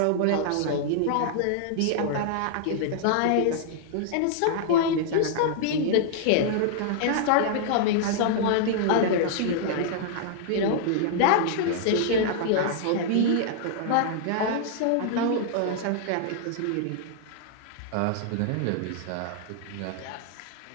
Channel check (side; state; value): both; different; correlation -0.01